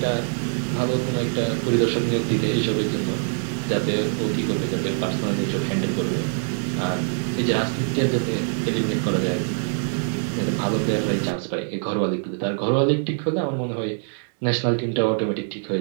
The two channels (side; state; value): left; silent; 58 dB below the other